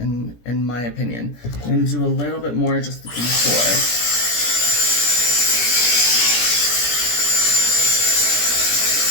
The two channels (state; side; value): late; right; 17 ms